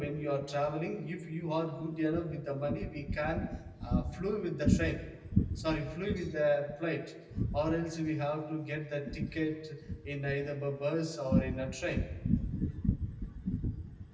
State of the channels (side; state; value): both; identical; correlation 1.00